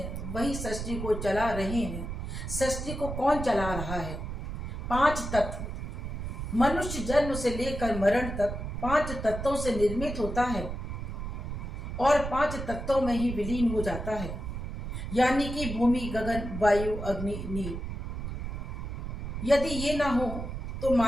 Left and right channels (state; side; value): noise; right; rumble, 5 dB below the sound